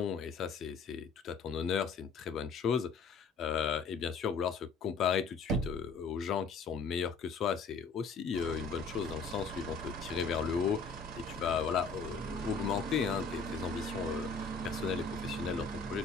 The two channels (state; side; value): quieter; right; 4.6 dB